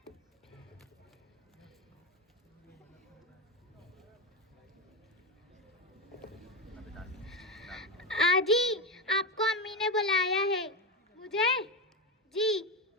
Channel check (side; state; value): both; normal; correlation 0.15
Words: आजी आपको अम्मी ने बुलाया है। मुझे? जी।